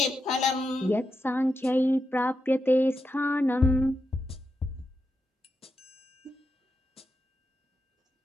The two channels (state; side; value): normal; both; correlation 0.86